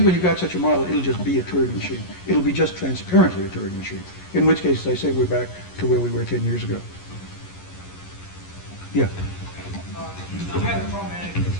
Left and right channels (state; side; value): late; right; 11 ms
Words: when you've got such a model, it'll just be a Turing machine. It'll be just transparently a Turing machine. In which case, as I say, we're back to where we were 10 years ago. Yeah. I had a traumatic